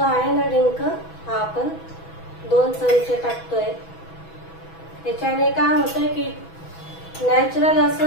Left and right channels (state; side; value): late; right; 6.1 ms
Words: ना डिंक, हा आपण 2 चमचे टाकतोय। याच्याने काय होतंय की नॅचरल